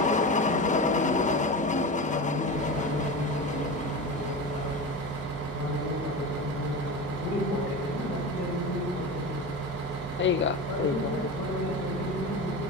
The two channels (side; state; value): both; normal; correlation 0.26